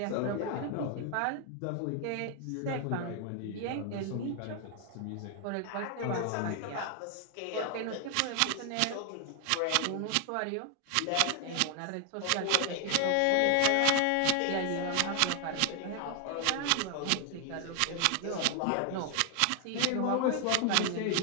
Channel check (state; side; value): different; both; correlation 0.00